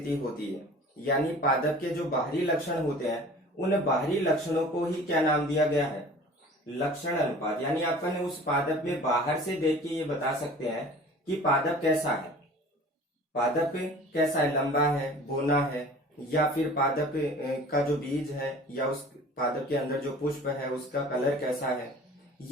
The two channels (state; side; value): normal; both; correlation 0.44